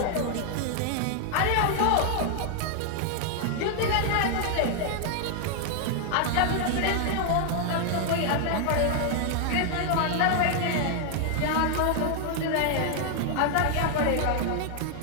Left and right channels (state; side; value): different; both; correlation 0.00